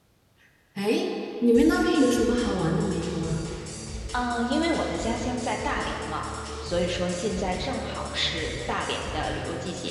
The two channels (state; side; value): identical; both; correlation 1.00